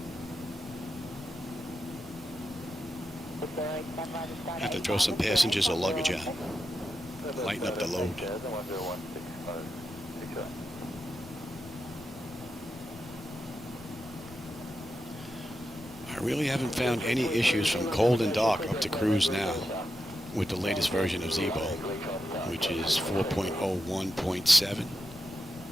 Have to throw some passengers or luggage out. Lighten up the load. I really haven't found any issues from cold and dark up to cruise now with the latest version of Zibo, which is 4.01.7.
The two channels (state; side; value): normal; both; correlation 0.88